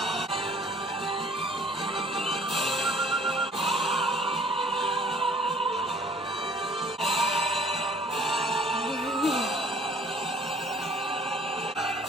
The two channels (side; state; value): both; normal; correlation 0.55